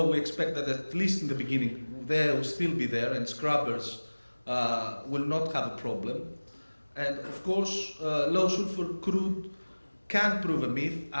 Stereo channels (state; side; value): inverted; both; correlation -1.00